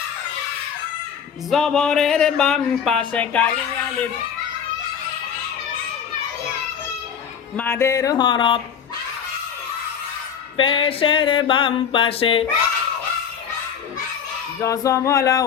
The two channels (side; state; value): right; quieter; 7.6 dB